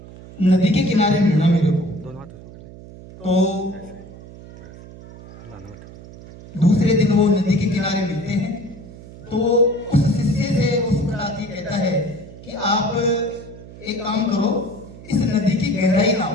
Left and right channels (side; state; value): right; noise; hum, 17 dB below the sound